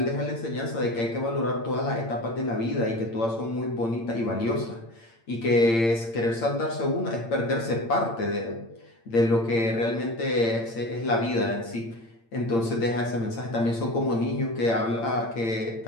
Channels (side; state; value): right; late; 8.8 ms